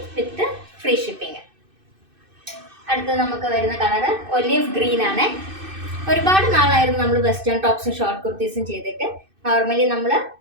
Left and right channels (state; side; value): late; left; 2.6 ms